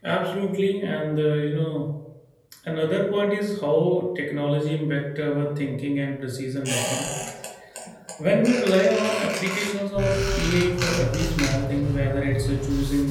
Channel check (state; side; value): identical; both; correlation 1.00